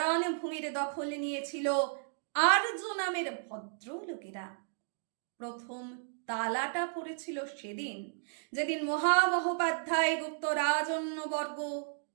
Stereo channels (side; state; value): left; silent; digital silence